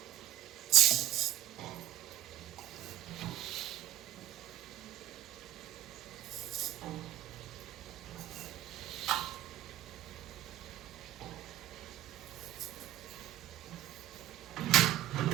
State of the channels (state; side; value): quieter; left; 13.8 dB